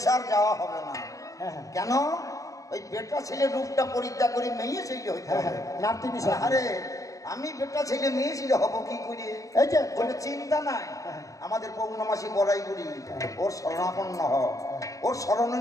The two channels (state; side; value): late; right; 0.16 ms